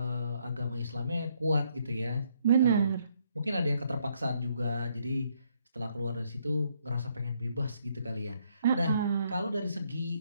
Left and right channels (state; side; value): inverted; both; correlation -0.71